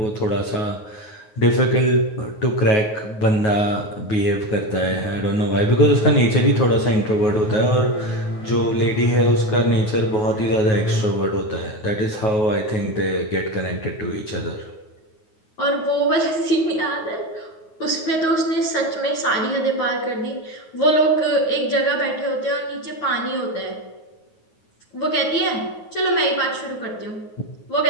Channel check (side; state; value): right; late; 9.4 ms